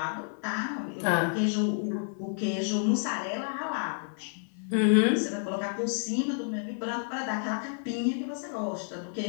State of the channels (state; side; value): silent; right; digital silence